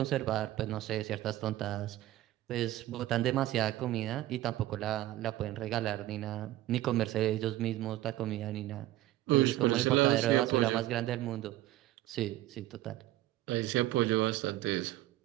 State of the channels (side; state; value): left; quieter; 15.4 dB